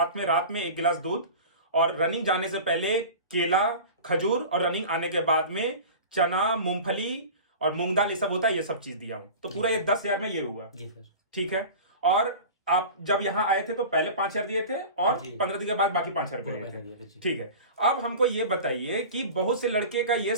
में रात में 1 गिलास दूध, और रनिंग जाने से पहले केला, खजूर, और रनिंग आने के बाद में चना, मूंगफली और मूंग दाल, ये सब होता है, ये सब चीज दिया हूं। तो पूरा ये 10,000 में ये हुआ। जी सर। ठीक है। और आप जब यहाँ आए थे तो पहले 5,000 दिए थे और 15 दिन के बाद बाकी 5,000 रुपए दिए थे। ठीक है। अब हमको ये बताइए कि बहुत से लड़के का ये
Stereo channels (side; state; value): both; inverted; correlation -0.35